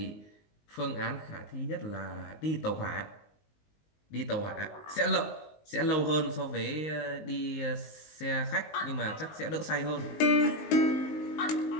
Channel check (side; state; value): right; late; 19 ms